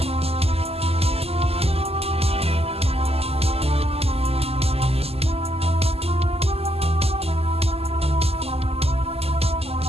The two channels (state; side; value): late; left; 0.29 ms